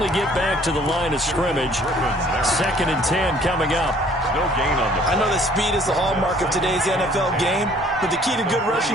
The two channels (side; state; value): both; normal; correlation 0.57